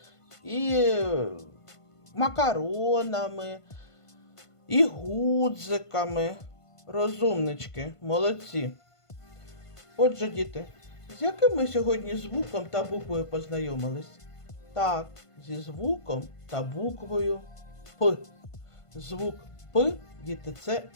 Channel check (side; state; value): right; late; 1.5 ms